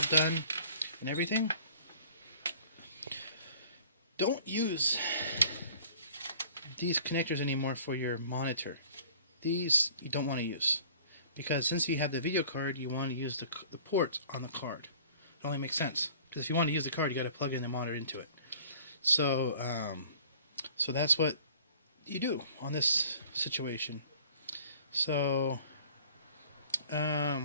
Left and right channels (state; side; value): inverted; both; correlation -0.50